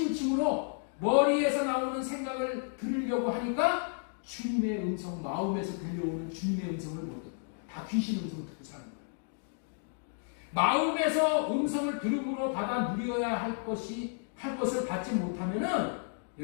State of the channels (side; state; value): right; silent; 56 dB below the other